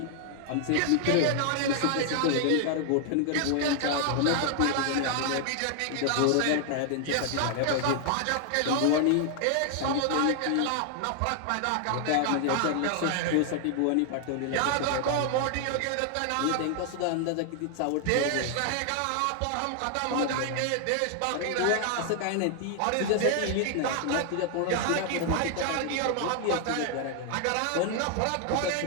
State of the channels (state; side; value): different; both; correlation 0.00